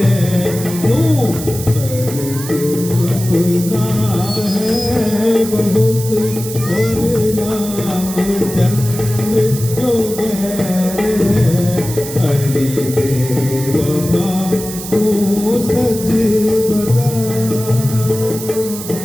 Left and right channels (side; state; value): right; noise; hiss, 10 dB below the sound